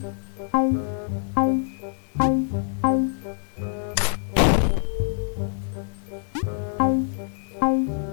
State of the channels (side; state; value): right; silent; 59 dB below the other